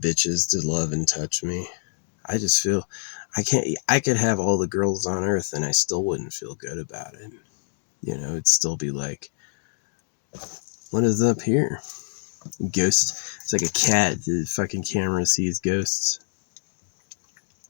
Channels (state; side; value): silent; right; digital silence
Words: bitches to love and touch me. I just feel I could have all the girls on earth and I still wouldn't feel good about it. You know, it'd still be like, what is up here? Ghost. It's like a cat. The fucking camera sees ghosts.